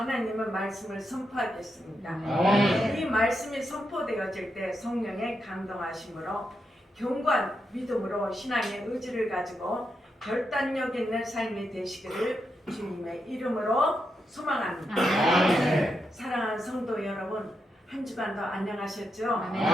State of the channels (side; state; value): both; normal; correlation 0.84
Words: 말씀을 선포하겠습니다. 이 말씀이 선포되어질 때 성령의 감동하심으로 경관 믿음으로 신앙의 의지를 가지고 결단력 있는 삶이 되시기를 주님의 이름으로 소망합니다. 사랑하는 성도 여러분, 한 주간도 안녕하셨죠?